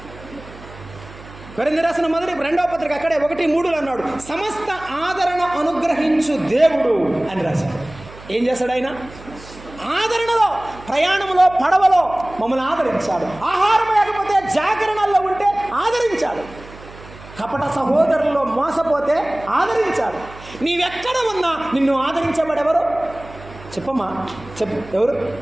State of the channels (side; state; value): right; noise; hum, 18 dB below the sound